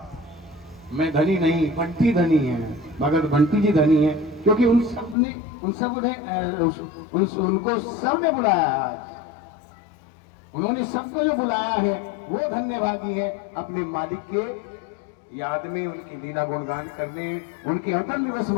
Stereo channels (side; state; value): right; drops out; at 5.2 s